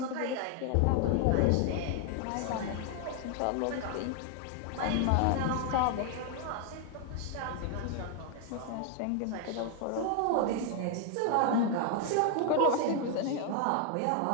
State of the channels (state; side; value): different; both; correlation 0.00